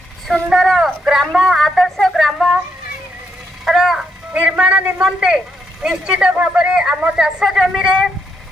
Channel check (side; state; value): both; normal; correlation 0.78